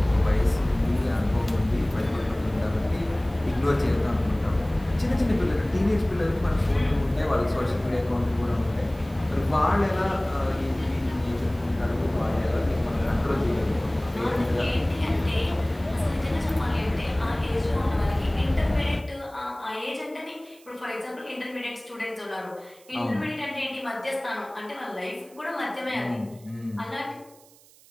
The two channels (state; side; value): noise; right; hiss, 26 dB below the sound